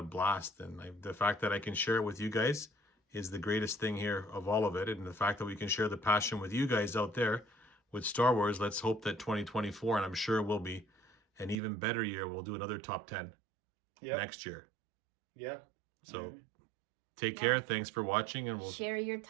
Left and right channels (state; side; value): drops out; left; at 11.6 s